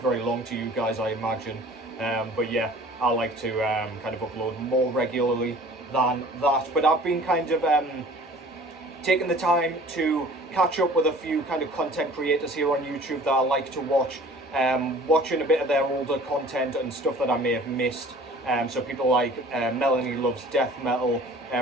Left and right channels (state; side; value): normal; both; correlation 0.48